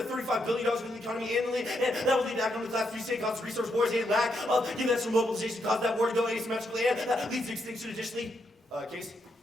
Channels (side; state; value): both; normal; correlation 0.79